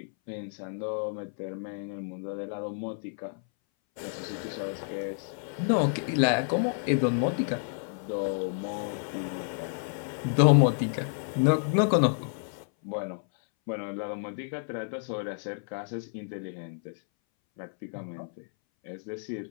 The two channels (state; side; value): silent; right; 58 dB below the other